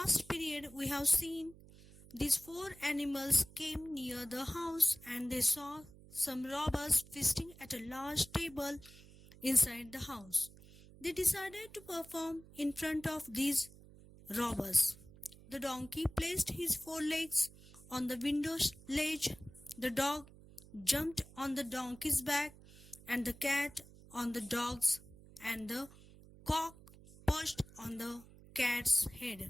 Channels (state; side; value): noise; right; hum, 21 dB below the sound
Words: period, we have seen these four animals came near the house and they saw some robbers feasting at a large table inside the house. They decided to perform in front of these robbers. The donkey placed his forelegs on the window ledge, the dog jumped on the donkey's back, and the cat on the dog's, and the cock perched on the cat's